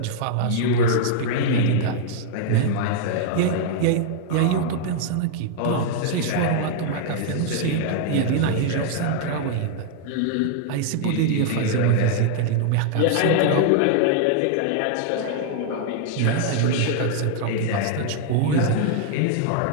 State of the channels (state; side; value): different; both; correlation -0.01